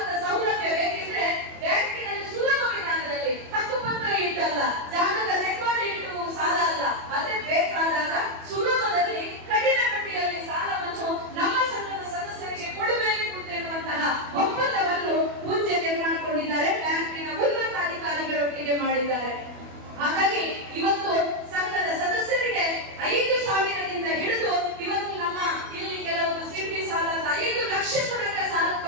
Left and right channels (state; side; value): late; left; 24 ms